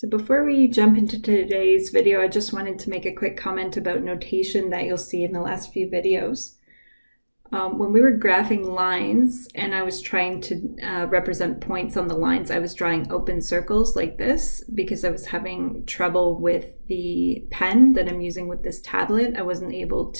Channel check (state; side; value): inverted; both; correlation -1.00